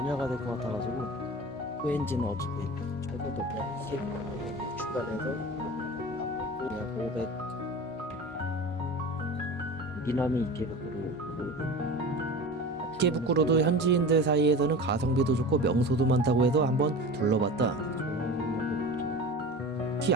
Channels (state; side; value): normal; both; correlation 0.33